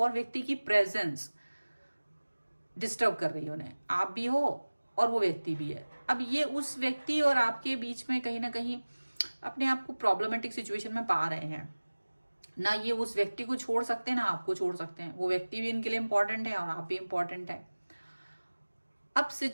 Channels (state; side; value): inverted; both; correlation -1.00